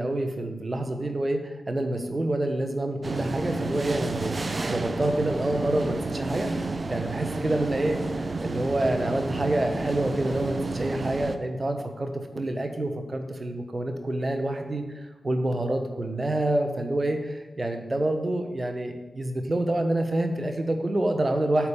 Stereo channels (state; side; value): normal; both; correlation 0.94